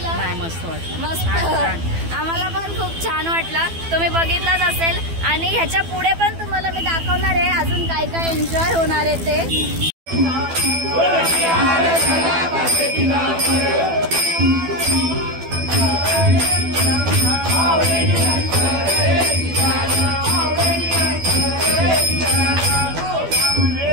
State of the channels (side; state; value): left; late; 12 ms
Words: मस्त वाटलं, मस्त। आम्हाला पण खूप छान वाटलं, तुम्ही बघितलंच असेल। आणि ह्याच्या पुढे पण तुम्हाला मी दाखवणार आहे अजून काय काय एन्जॉय होणार आहे ते।